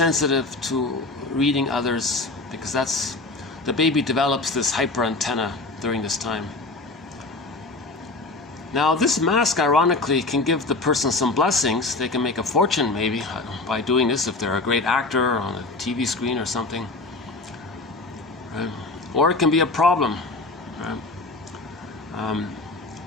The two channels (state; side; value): quieter; right; 3.3 dB